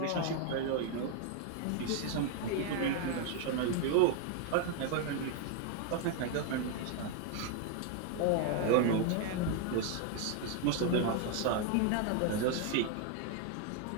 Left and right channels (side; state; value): both; different; correlation 0.01